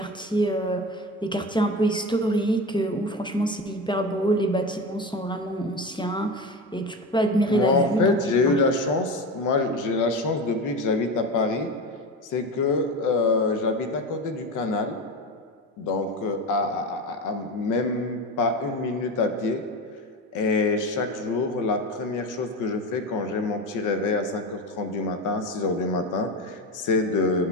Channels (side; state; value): both; normal; correlation 0.23